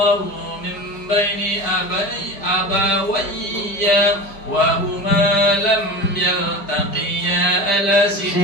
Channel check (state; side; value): late; right; 5.0 ms